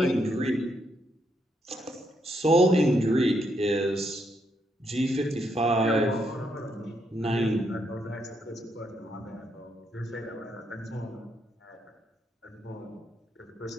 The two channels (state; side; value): normal; both; correlation 0.77